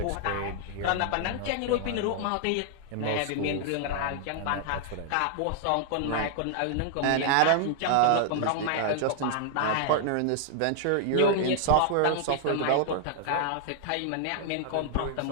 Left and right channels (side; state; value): both; different; correlation -0.01